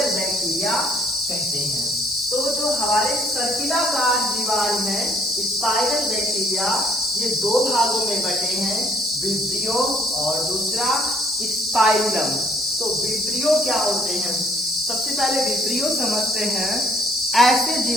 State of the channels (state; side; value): normal; both; correlation 0.61